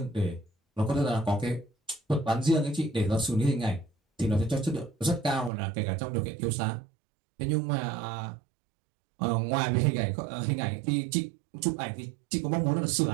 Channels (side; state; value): left; drops out; at 5.5 s